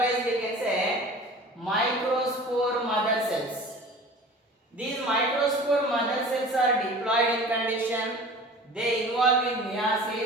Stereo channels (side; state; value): both; normal; correlation 0.41